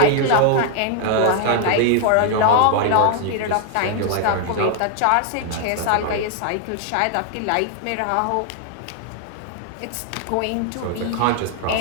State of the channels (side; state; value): both; different; correlation 0.00